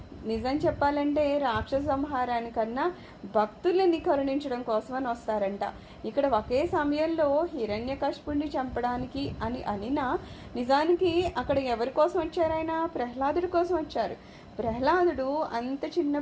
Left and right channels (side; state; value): both; identical; correlation 1.00